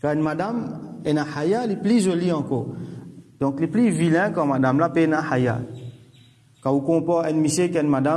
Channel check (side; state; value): both; identical; correlation 1.00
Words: quand une madame, elle a haya, elle est plus jolie encore. Donc, les plus vilains comme madame là, elle a haya. Quand vous comparez un monsieur qui a une